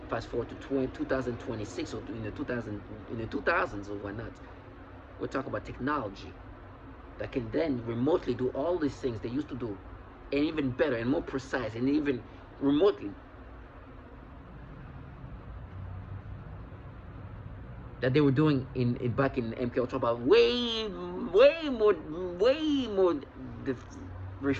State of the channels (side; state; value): both; identical; correlation 1.00